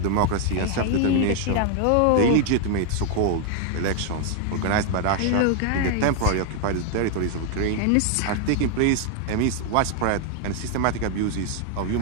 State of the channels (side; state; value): both; different; correlation 0.00